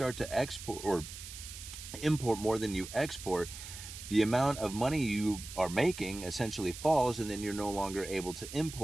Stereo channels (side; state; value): right; noise; hiss, 12 dB below the sound